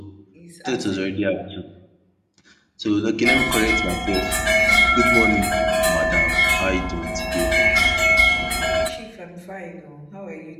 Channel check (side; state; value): both; identical; correlation 1.00